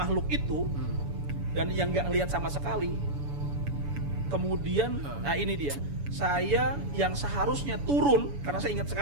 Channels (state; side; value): late; left; 7.0 ms